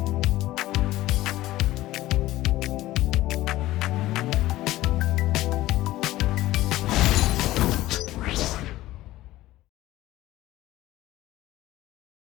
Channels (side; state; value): right; quieter; 16.3 dB